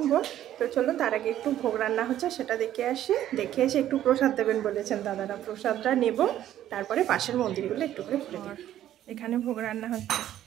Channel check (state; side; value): quieter; left; 12.1 dB